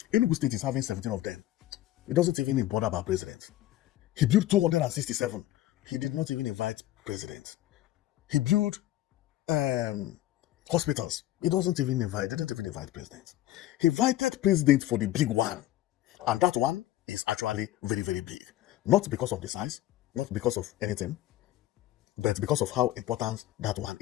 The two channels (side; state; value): right; quieter; 14.6 dB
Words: Enugu State is having 17 of them. He doesn't even bother about president. He built 267. He did not even invite president. He built hospitals. He didn't even invite president. He invited president for the big one. And that one is actually very, very big. Not because of the size, not because of anything, but because of how important that one